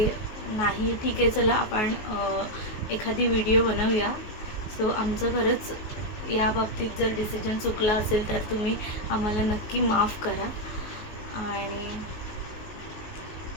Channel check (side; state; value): right; late; 19 ms